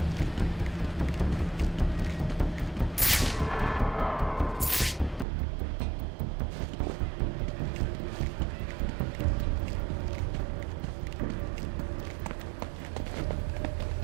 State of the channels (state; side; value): drops out; left; at 5.2 s